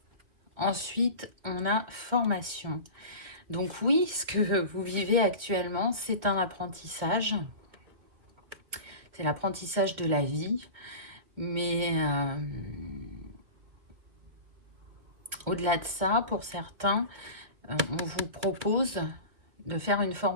Ensuite, on a formation. Donc oui, ce que vous vivez actuellement, c'est un apprentissage. C'est l'apprentissage de la vie. Mais au-delà de ça, pour certains, on vous propose de faire une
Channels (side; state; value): left; late; 2.6 ms